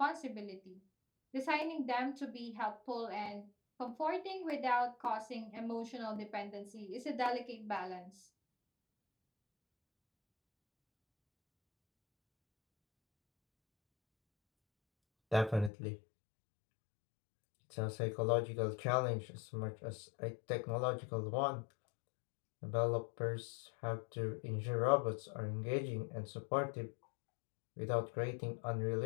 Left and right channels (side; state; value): right; drops out; at 15.7 s